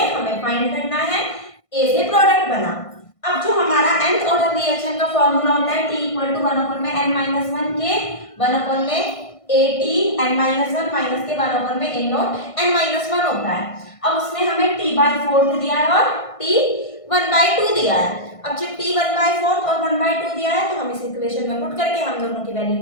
हमें फाइंड करना है, ए से प्रोडक्ट बना। अब जो हमारा nth ऑर्डर रिएक्शन का फॉर्मूला होता है t इक्वल टू 1 अपॉन में n माइनस वन के 1 अपॉन में A T n minus one minus के 1 अपॉन में A not n minus one होता है। अब उसने हमें t/4 दिया है और t 1/2 दिया है। अब जब t 1/4 और 1/2 दिया है तो हम इस इक्वेशन में पुट करके हम दोनों की वैल्यू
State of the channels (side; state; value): right; late; 1.5 ms